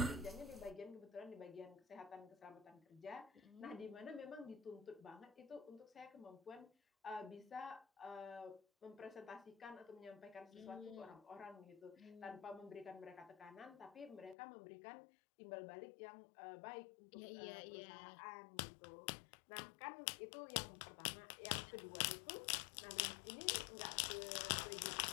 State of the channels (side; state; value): right; drops out; at 14.4 s